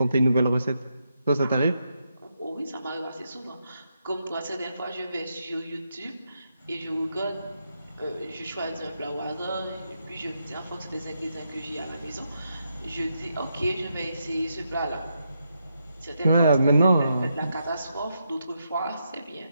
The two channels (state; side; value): inverted; both; correlation -0.82